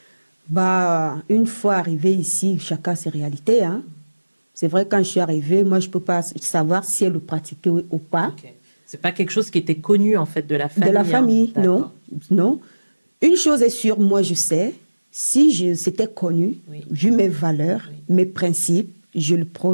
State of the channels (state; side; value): inverted; both; correlation -1.00